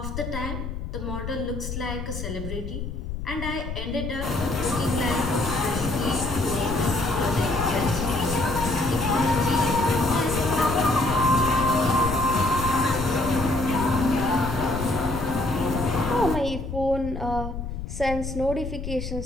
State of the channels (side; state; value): left; noise; rumble, 6 dB below the sound